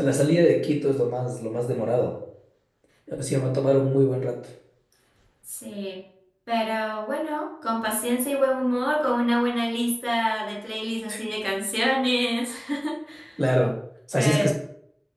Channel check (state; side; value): identical; both; correlation 1.00